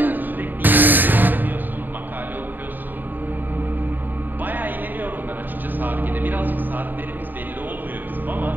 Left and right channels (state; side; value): late; left; 0.090 ms